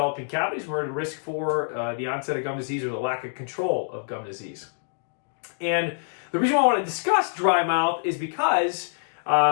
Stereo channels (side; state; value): right; silent; digital silence